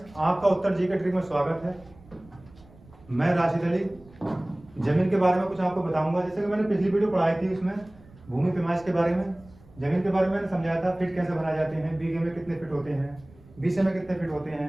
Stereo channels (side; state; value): right; noise; rumble, 24 dB below the sound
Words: आपका उत्तर जी के ट्रिक में स्वागत है। मैं राशिद अली जमीन के बारे में कुछ आपको बताऊंगा। जैसे कि मैंने पिछली वीडियो पढ़ाई थी, उसमें भूमि पैमाइश के बारे में, जमीन के बारे में मैंने समझाया था। फिट कैसे बनाए जाते हैं, बीघे में कितने फिट होते हैं, बीसे में कितने फिट होते